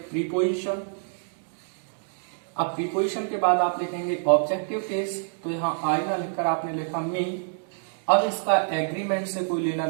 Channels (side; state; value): left; silent; digital silence